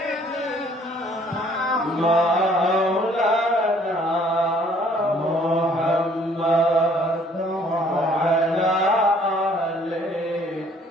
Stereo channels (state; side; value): normal; both; correlation 0.59